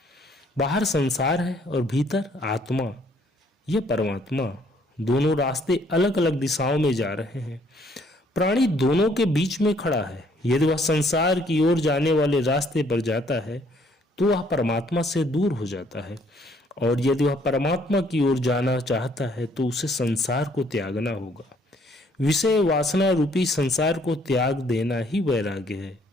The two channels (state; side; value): normal; both; correlation 0.64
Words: बाहर संसार है और भीतर आत्मा, यह परमात्मा। दोनों रास्ते अलग अलग दिशाओं में जा रहे हैं। प्राणी दोनों के बीच में खड़ा है। यदि वह संसार की ओर जाने वाले रास्ते पर जाता है, तो वह परमात्मा से दूर हो जाता है, और यदि वह परमात्मा की ओर जाना चाहता है, तो उसे संसार को त्यागना होगा। विषय वासना रूपी संसार को त्याग देना ही वैराग्य है।